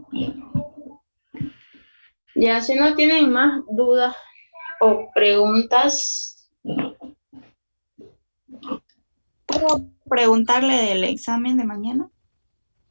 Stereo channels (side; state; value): both; inverted; correlation -1.00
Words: Ya, si no tienen más dudas o preguntas. ¿Puedo preguntarle del examen de mañana?